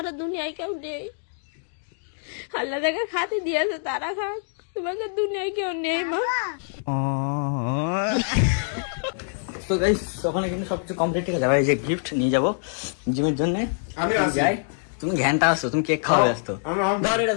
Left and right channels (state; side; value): silent; right; digital silence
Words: দুনিয়ায় কেউ নেই। আল্লাহ যাকে খাতে দিয়েছে তারা খাক, তোমাকে দুনিয়ায় কেউ নেই মা। তো গাইস ওখানে কিন্তু সবকিছু কমপ্লিট, ঠিক আছে? এবার এই যে গিফট নিয়ে যাবো জিমের জন্য। আমি আসি। যাই, তুমি ঘ্যানটা আসো, তুমি কেক খাওয়া ব্যস্ত। আমি- ধর এটা